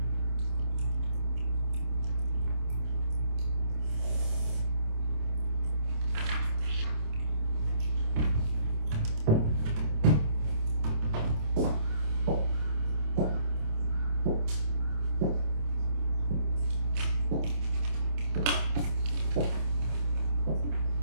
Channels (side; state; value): left; late; 27 ms